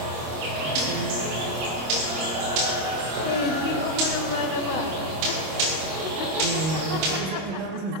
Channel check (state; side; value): late; left; 26 ms